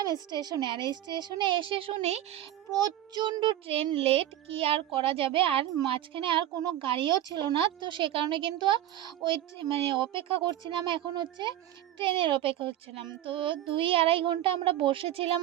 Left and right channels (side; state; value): left; quieter; 12.7 dB